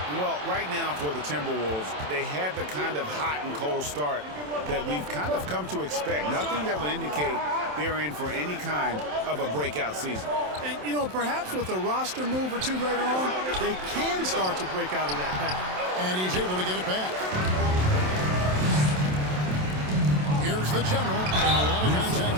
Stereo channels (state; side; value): late; left; 27 ms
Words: Well, right now for the Timberwolves, they had the kind of hot and cold start that we've kind of come to expect. Nothing that would indicate they're in for any kind of a breakout season. And, you know, perhaps with a roster move or two later on, they can start to break out of that pack. And he's able to get it back. Here's the general, and a lot of